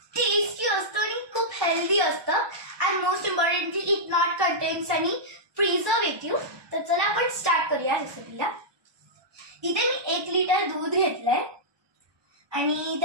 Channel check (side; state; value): left; late; 1.2 ms